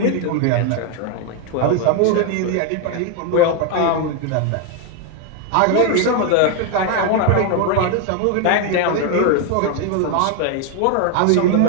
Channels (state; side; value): different; both; correlation 0.01